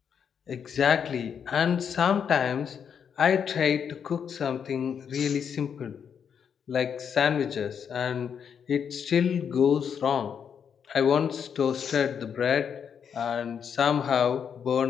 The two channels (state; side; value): quieter; right; 7.4 dB